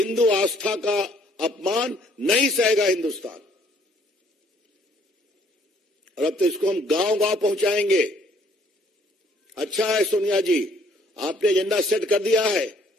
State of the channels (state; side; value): normal; both; correlation 0.63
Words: आस्था का अपमान नहीं सहेगा हिंदुस्तान। और अब तो इसको हम गांव गांव पहुंचाएंगे। अच्छा है सोनिया जी, आपने एजेंडा सेट कर दिया है